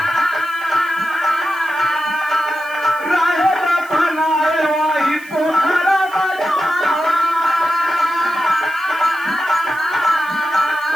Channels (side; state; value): right; noise; hiss, 22 dB below the sound